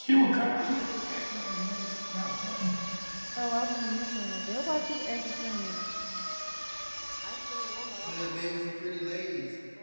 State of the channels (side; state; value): both; inverted; correlation -1.00